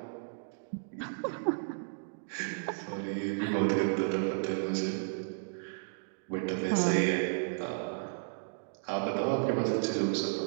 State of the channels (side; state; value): left; silent; digital silence